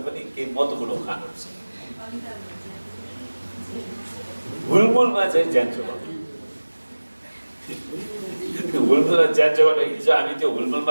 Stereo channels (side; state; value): both; inverted; correlation -1.00